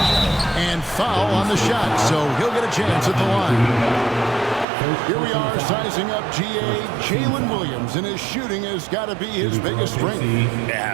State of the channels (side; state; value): left; drops out; at 4.7 s